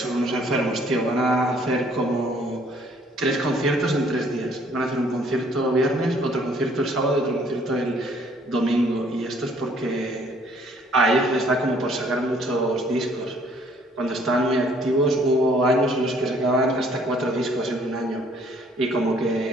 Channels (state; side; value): normal; both; correlation 0.61